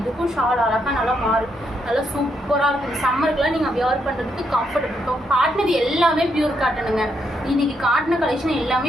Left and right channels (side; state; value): both; normal; correlation 0.78